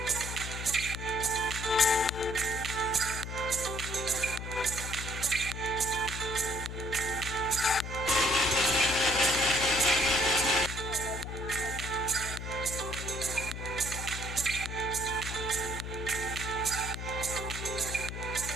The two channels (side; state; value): left; noise; hum, 7 dB below the sound